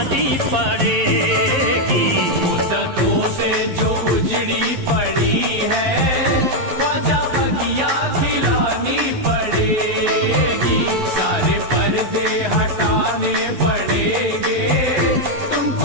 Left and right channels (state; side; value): late; left; 11 ms